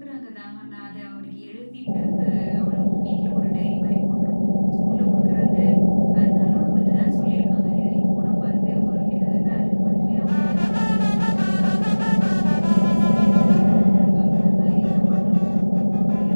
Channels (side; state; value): both; inverted; correlation -1.00